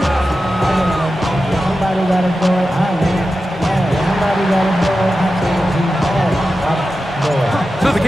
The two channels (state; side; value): normal; both; correlation 0.92